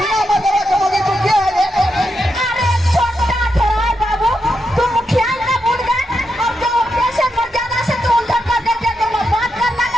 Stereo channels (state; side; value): normal; both; correlation 0.84